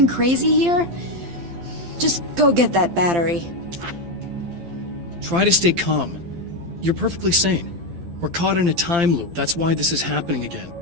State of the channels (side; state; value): left; late; 12 ms